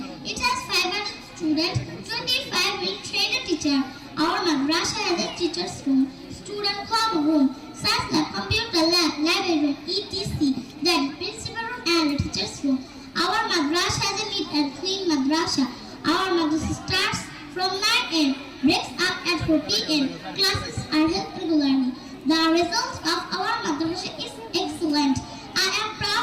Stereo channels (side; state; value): both; identical; correlation 1.00